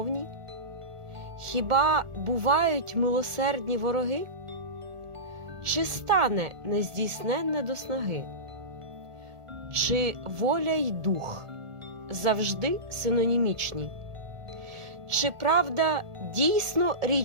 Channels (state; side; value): late; left; 1.5 ms